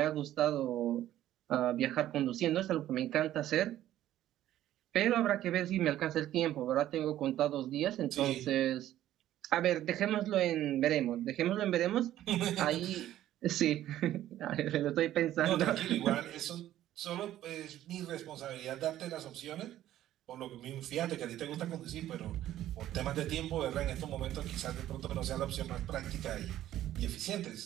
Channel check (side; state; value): left; quieter; 13.0 dB